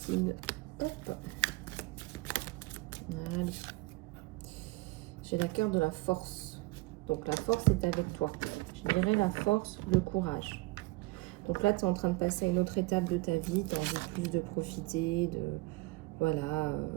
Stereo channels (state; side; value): quieter; left; 23.0 dB